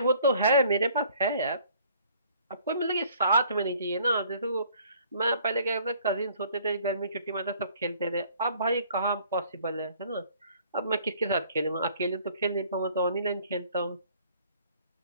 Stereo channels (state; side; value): inverted; both; correlation -0.58